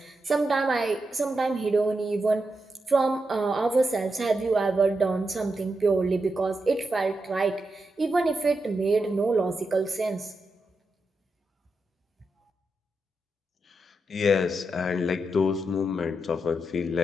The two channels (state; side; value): normal; both; correlation 0.86